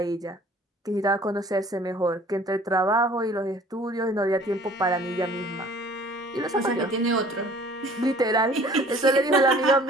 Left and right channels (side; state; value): both; normal; correlation 0.51